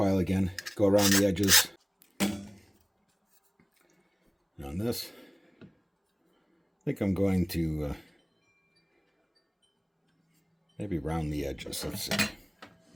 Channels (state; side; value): identical; both; correlation 1.00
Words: again, go around the edges. And on this, I think I'm going to maybe round the edges. Let's see.